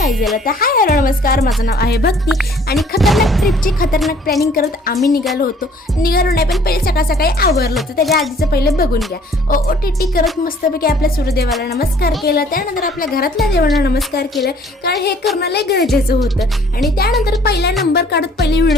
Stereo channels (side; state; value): both; normal; correlation 0.57